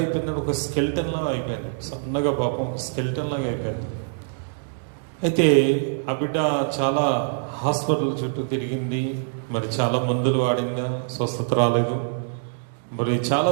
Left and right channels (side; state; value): left; silent; digital silence